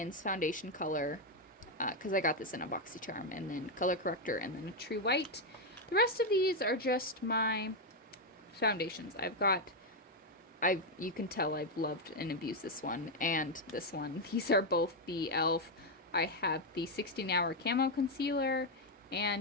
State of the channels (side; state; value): both; normal; correlation 0.03